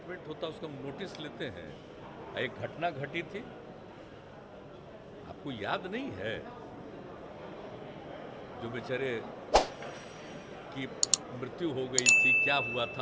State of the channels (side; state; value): both; identical; correlation 1.00